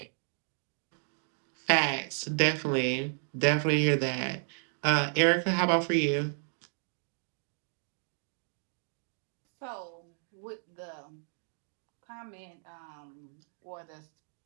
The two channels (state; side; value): silent; left; 56 dB below the other